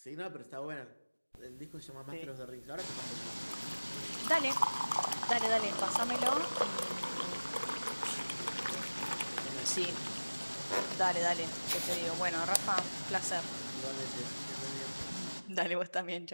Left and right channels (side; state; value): both; inverted; correlation -1.00